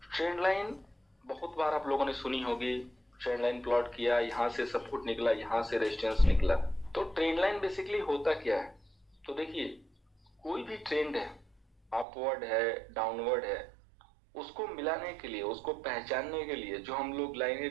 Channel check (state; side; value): drops out; left; at 12.1 s